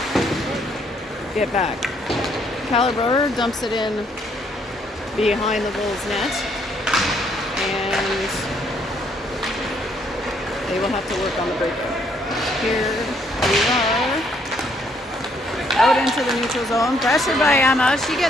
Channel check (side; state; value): both; normal; correlation 0.69